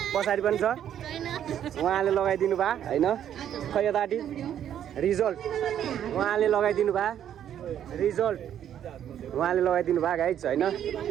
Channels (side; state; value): left; quieter; 10.1 dB